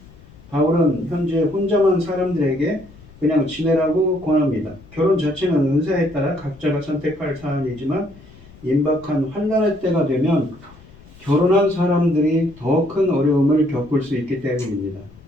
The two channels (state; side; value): noise; left; rumble, 23 dB below the sound